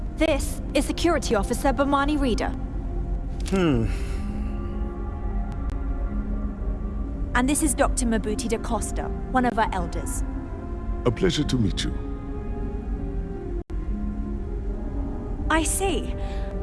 This is Security Officer Bomani Reader. And this is Dr. Mabuti da Costa, one of our elders. A pleasure to meet you. I see.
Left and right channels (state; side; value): identical; both; correlation 1.00